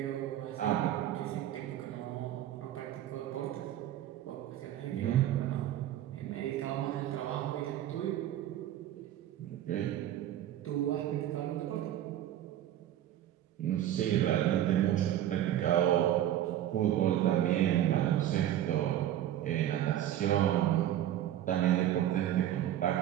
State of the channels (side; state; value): left; quieter; 12.1 dB